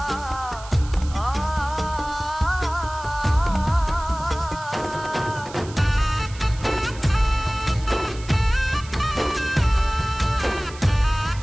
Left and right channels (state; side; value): noise; right; hiss, 18 dB below the sound